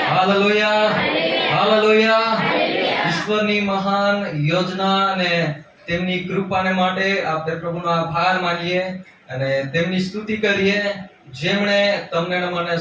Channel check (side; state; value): both; identical; correlation 1.00